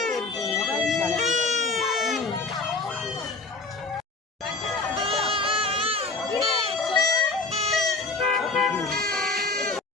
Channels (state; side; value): quieter; right; 3.6 dB